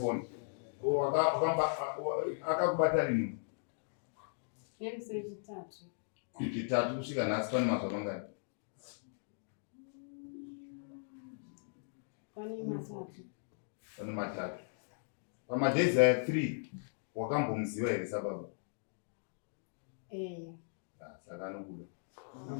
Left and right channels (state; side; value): silent; right; digital silence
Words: Akakubata rini? Nemusi wechitatu. Chitatu kusvika nhasi pane mazuva mangani? Pane matatu. Pane matatu. Pamadhezi aya 3 wakambomuziva here sababa? Eya. Saka anokuda.